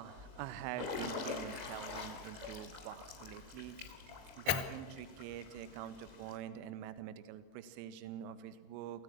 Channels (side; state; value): left; late; 23 ms